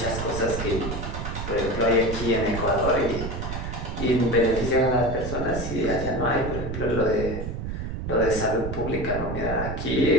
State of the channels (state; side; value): noise; right; rumble, 5 dB below the sound